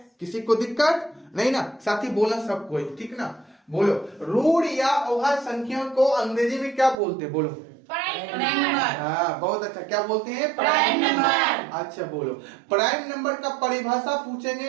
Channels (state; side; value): drops out; left; at 7.0 s